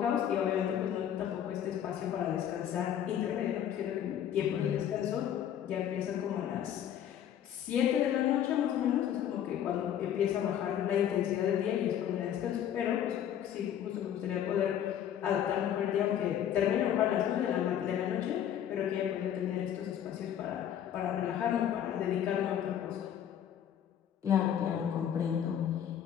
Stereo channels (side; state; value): right; quieter; 10.0 dB